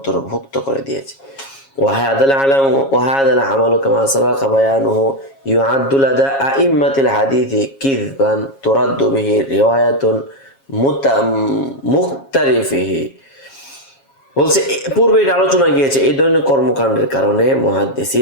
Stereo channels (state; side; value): late; right; 7.3 ms